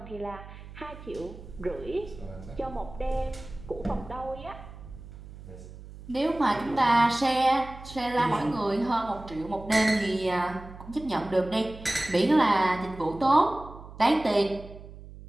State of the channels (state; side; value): noise; right; hum, 16 dB below the sound